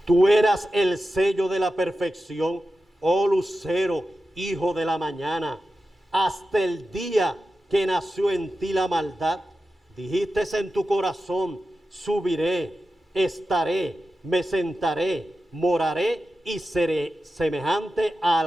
tú eras el sello de la perfección, oh lucero, hijo de la mañana. Hasta el día que nació en ti la maldad, dijiste en tu corazón, subiré, estaré, me sentaré, moraré y seré semejante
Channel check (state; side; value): normal; both; correlation 0.92